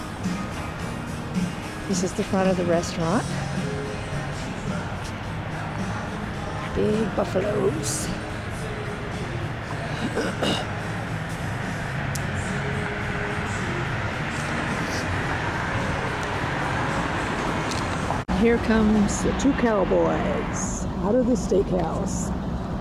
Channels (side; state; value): both; identical; correlation 1.00